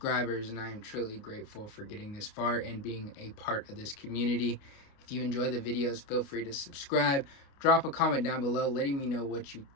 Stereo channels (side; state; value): right; late; 29 ms